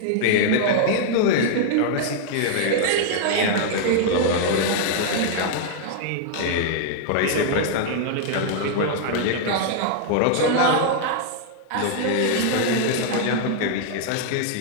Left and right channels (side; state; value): both; different; correlation -0.01